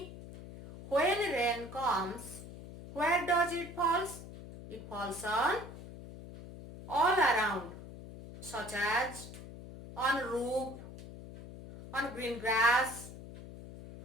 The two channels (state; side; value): noise; left; hum, 14 dB below the sound